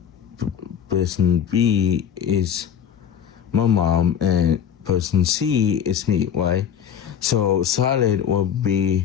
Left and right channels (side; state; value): right; quieter; 8.8 dB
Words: person B is my mom, and person C is me, right? So Charlotte will